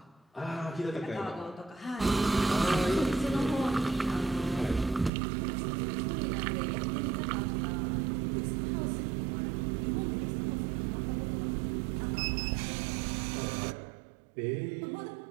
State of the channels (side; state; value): left; drops out; at 5.1 s